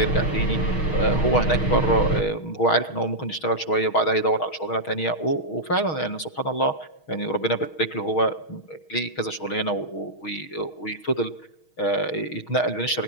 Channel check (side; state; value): right; late; 6.4 ms